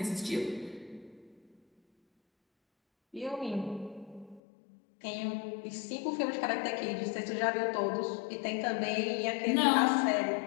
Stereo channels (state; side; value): drops out; right; at 4.4 s